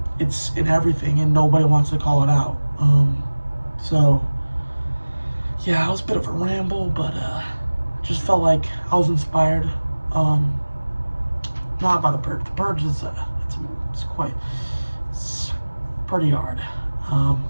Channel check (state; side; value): inverted; both; correlation -1.00